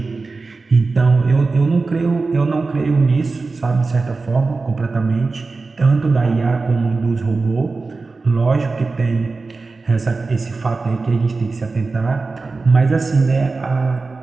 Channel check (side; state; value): left; quieter; 3.9 dB